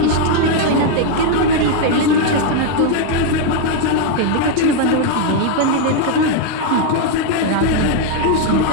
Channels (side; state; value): both; different; correlation 0.01